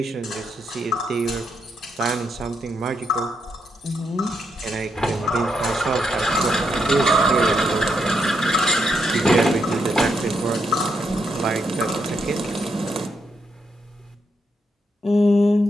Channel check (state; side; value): normal; both; correlation 0.79